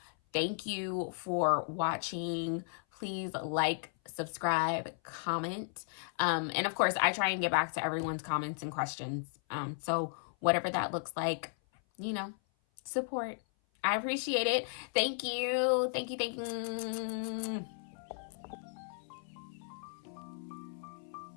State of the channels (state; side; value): silent; right; 54 dB below the other